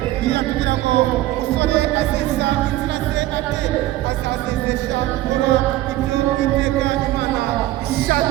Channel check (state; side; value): quieter; left; 15.8 dB